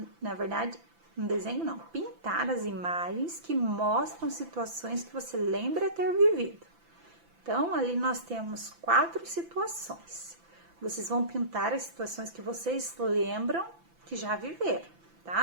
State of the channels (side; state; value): left; late; 5.9 ms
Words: na verdade, um desenho não, pintar as imagens que mostram situações que você lembra ter vivido. Então, ali nós temos 4 situações. Vocês vão pintar as situações que vocês lembram que já viveram,